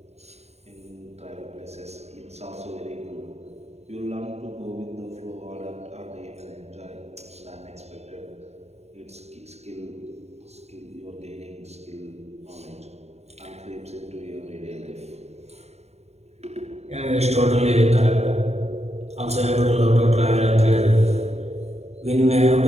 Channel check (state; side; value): late; left; 0.31 ms